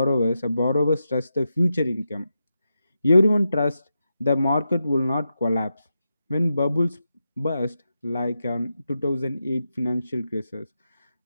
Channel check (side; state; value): both; inverted; correlation -0.88